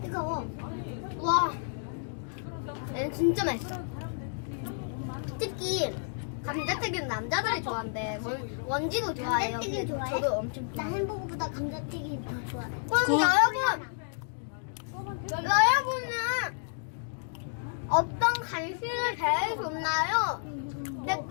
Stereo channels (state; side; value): silent; right; digital silence